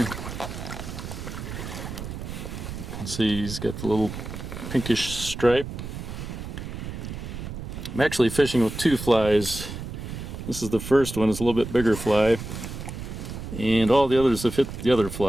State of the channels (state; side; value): noise; right; rumble, 8 dB below the sound